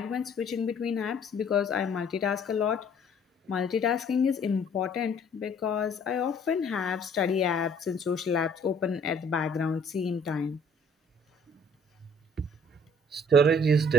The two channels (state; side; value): normal; both; correlation 0.57